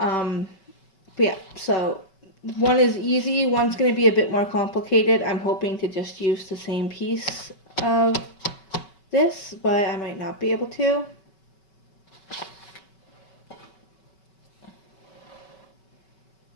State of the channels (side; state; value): right; late; 5.3 ms